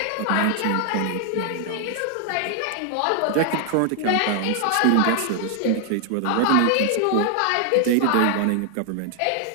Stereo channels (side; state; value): both; different; correlation 0.00